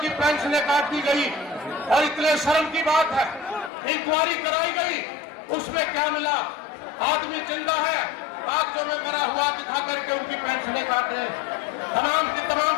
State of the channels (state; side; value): drops out; right; at 3.7 s